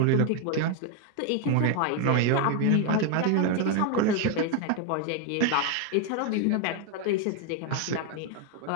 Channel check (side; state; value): both; different; correlation 0.01